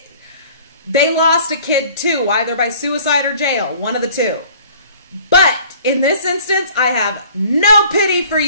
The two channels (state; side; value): inverted; both; correlation -0.50